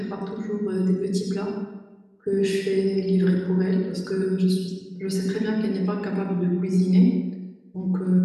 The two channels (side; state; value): both; identical; correlation 1.00